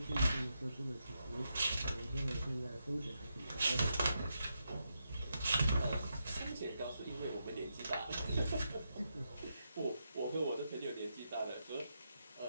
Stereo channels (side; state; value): both; inverted; correlation -0.84